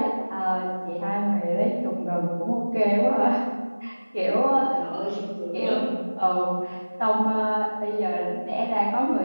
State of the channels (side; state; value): both; inverted; correlation -1.00